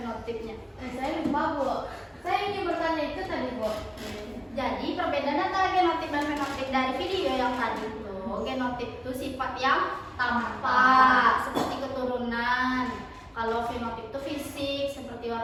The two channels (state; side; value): identical; both; correlation 1.00